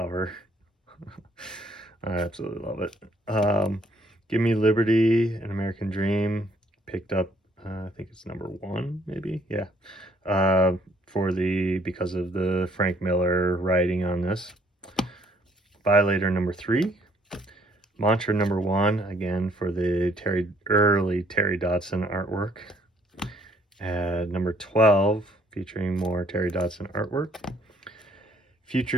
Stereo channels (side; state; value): both; normal; correlation 0.65